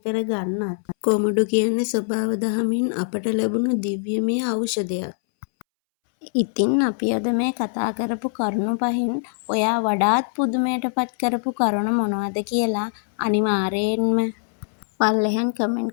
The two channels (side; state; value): right; silent; 64 dB below the other